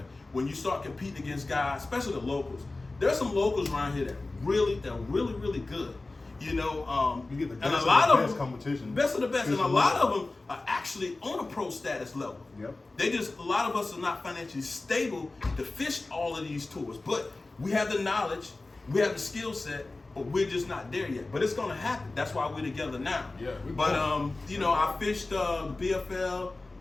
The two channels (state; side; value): quieter; right; 3.2 dB